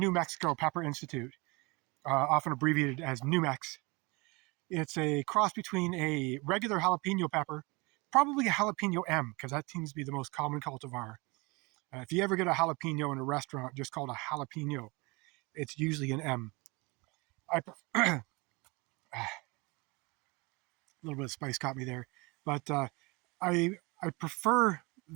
Mexico Pepper Institute, often abbreviated as Numex. It's a cross between a regular jalapeno pepper, probably a jalapeno M, because that seems to be the most common cultivar. If you ever get a jalapeno in a restaurant just called a jalapeno, it's usually an M. A little bit of spice caught me there, but I prefer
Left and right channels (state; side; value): quieter; left; 26.5 dB